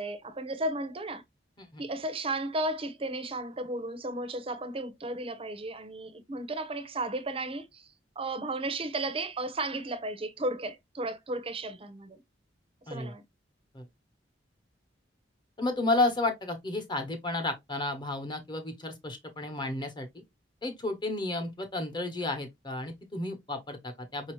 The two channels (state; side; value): normal; both; correlation 0.21